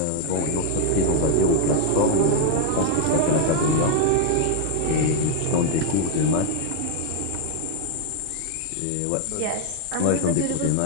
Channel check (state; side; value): different; both; correlation 0.00